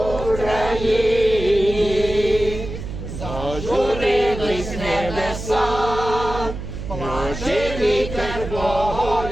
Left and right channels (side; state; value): right; noise; hum, 8 dB below the sound